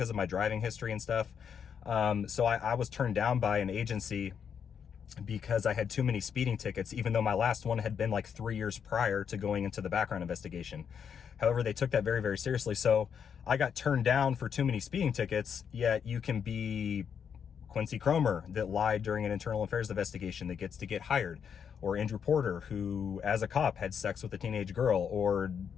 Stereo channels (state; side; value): quieter; right; 7.4 dB